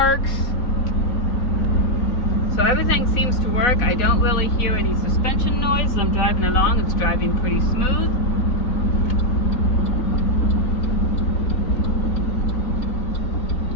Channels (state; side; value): late; right; 4.0 ms